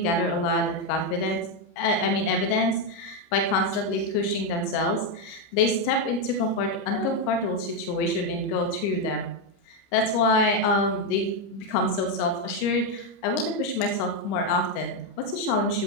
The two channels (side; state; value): right; late; 30 ms